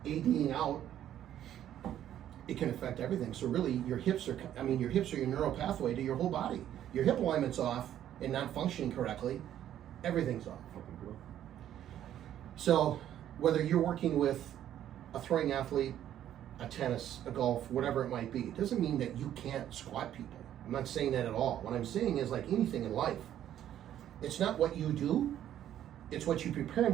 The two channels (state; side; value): quieter; left; 11.2 dB